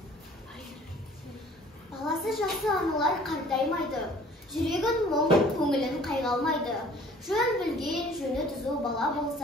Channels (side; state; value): both; normal; correlation 0.52